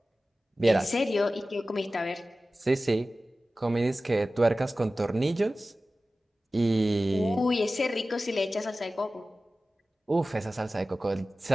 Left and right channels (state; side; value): normal; both; correlation 0.96